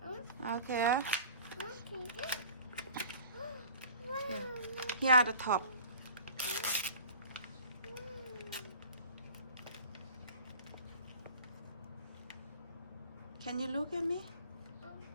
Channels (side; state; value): both; inverted; correlation -0.45